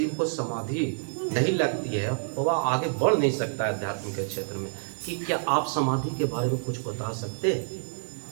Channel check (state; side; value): silent; left; digital silence